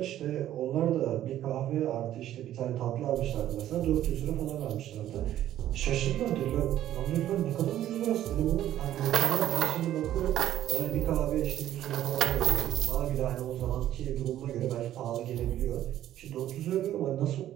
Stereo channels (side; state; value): left; quieter; 12.4 dB